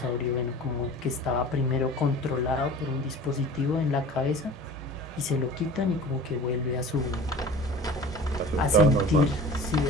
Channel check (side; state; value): both; normal; correlation 0.40